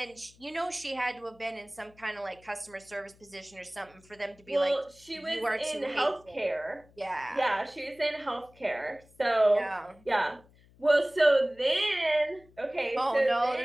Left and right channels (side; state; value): left; noise; hum, 28 dB below the sound